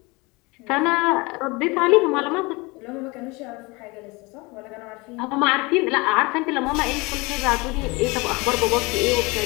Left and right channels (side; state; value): right; quieter; 25.5 dB